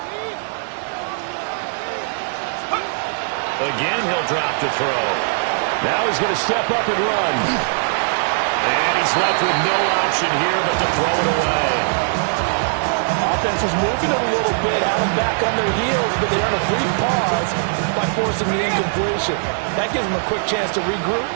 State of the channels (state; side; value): silent; left; digital silence